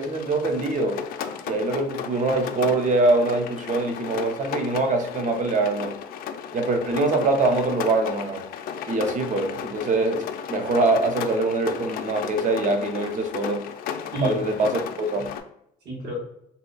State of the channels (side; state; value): both; normal; correlation 0.37